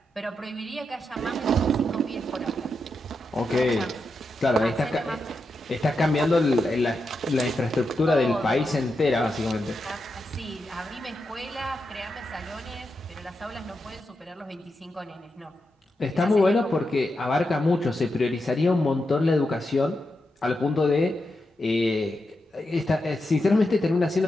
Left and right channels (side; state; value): both; normal; correlation 0.87